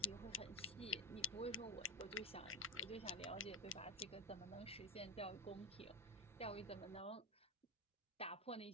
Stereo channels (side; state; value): both; normal; correlation 0.14